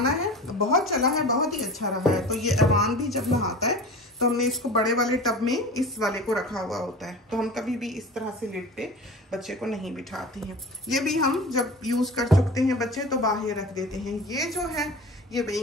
है, बहुत चला है, बहुत ही अच्छा रहा है। तो ये अमान भी जब नहाता है तो हमने इसको बड़े वाले टब में इस वाले को रखा हुआ होता है, तो हम कभी भी इस तरह से लिड पे बच्चे को नहीं बिठाते हैं। ये भी हम जब यूज़ कर चुकते हैं बच्चे तो बाहर रख देते हैं। ये जो है ये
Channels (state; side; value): normal; both; correlation 0.35